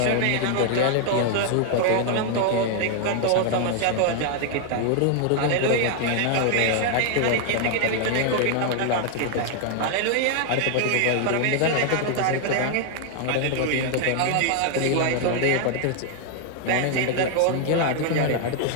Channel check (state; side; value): different; both; correlation 0.00